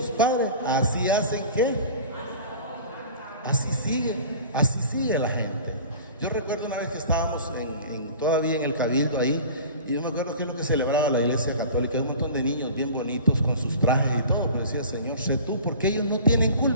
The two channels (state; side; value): inverted; both; correlation -0.40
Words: padres, así hacen que así sigue la gente. Yo recuerdo una vez que estábamos todavía en el cabildo ahí, y yo me acuerdo que es lo que celebraba la iglesia católica, un montón de niños bien bonitos con sus trajes y todo, pero decía, Señor, sé tú, porque ellos no tienen